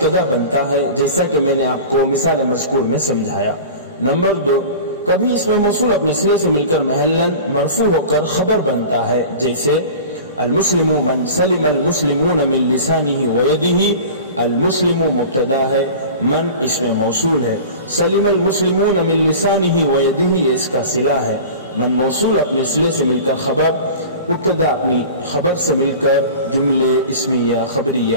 بنتا ہے، جیسا کہ میں نے آپ کو مثال مذکور میں سمجھایا۔ نمبر 2 کبھی اسم موصول اپنے صلے سے مل کر محلا مرفوع ہو کر خبر بنتا ہے، جیسے المسلم من سلم المسلمون من لسانه ويده۔ المسلم مبتدا ہے، من اسم موصول ہے، سلم المسلمون من لسانه ويده یہ اس کا صلہ ہے۔ من موصول اپنے صلے سے مل کر خبر، مبتدا اپنی خبر سے مل کر جملے اسمیہ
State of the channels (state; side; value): inverted; both; correlation -0.37